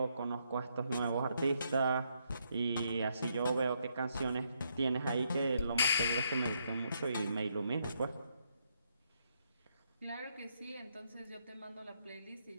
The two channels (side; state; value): both; inverted; correlation -0.77